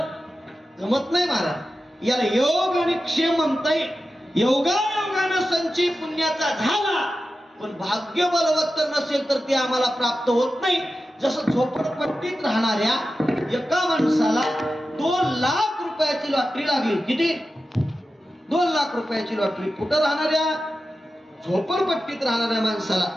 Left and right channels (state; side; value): normal; both; correlation 0.92